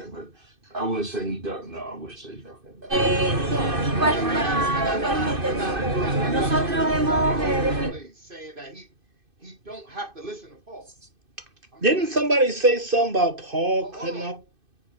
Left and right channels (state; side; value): late; left; 2.5 ms